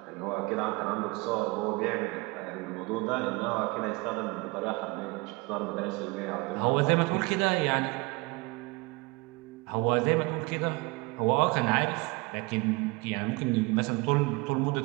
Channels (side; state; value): left; quieter; 25.5 dB